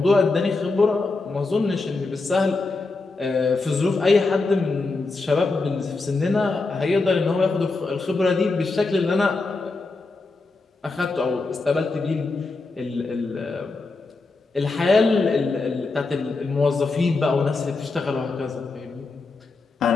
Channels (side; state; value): right; quieter; 3.7 dB